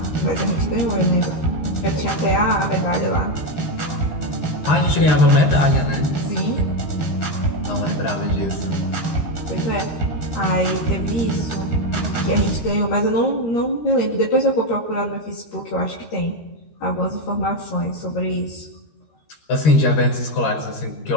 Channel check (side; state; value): right; late; 13 ms